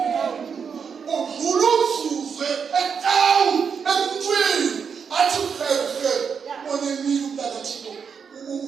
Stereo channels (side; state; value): left; quieter; 6.5 dB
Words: udlula umzuzu etown emntwini athi uhehe onemile umntakathixo